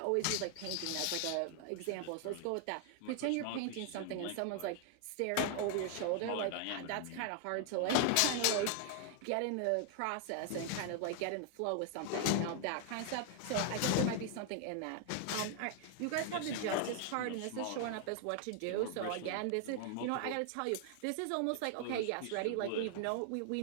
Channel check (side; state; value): both; different; correlation 0.00